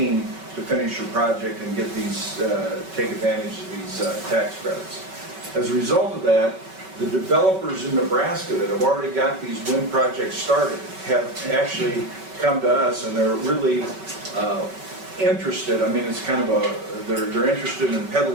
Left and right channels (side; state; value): left; late; 5.3 ms